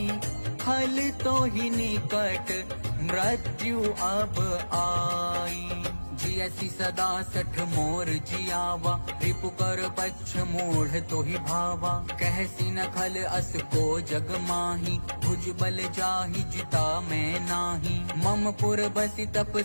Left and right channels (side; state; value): both; inverted; correlation -1.00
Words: खल तो ही निकट मृत्यु अब आई। जियसी सदा सठ मोर जियावा रिपु कर पच्छ मूढ़ तो ही भावा। कहसी न खल अस को जग माही भुज बल जाहि जिता मैं नाही। मम पुर बसी तप